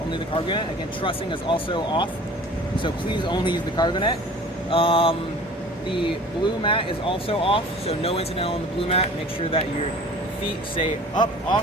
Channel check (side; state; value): both; normal; correlation 0.45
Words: the cargo net. Again, trussing is also off, so please only use the cargo net. The blue mat is also off, so no incidental on the blue mat. Make sure that your feet stay up,